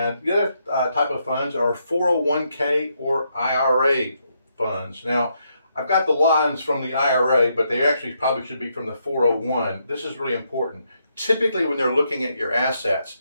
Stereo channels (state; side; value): inverted; both; correlation -0.78